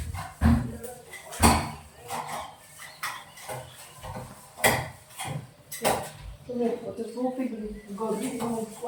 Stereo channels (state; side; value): identical; both; correlation 1.00